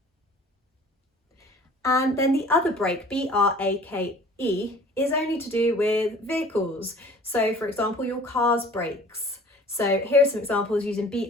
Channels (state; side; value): normal; both; correlation 0.49